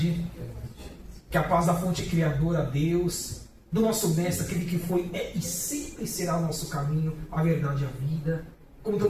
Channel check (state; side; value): identical; both; correlation 1.00